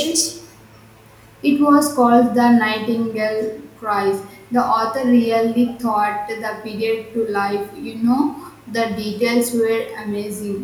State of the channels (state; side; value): identical; both; correlation 1.00